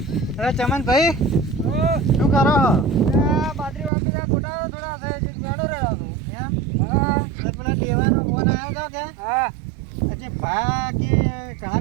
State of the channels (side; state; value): left; drops out; at 3.9 s